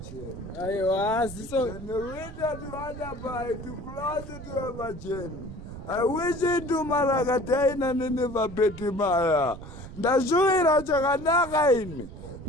Aiwa, ziso. And the reader to Adabai to close it to Everton. I wish him to Maragataina Nineva Betimaya. Ndazhuira chakanaka ini.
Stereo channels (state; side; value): noise; right; rumble, 13 dB below the sound